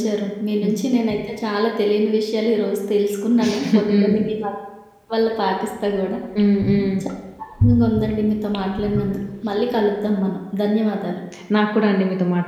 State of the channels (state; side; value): identical; both; correlation 1.00